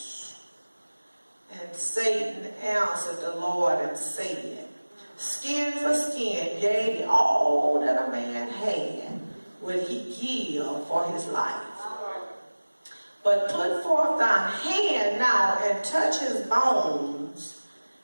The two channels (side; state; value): both; inverted; correlation -1.00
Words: And Satan answered the Lord and said, skin for skin, yea, all that a man had would he give for his life. But put forth thine hand now and touch his bones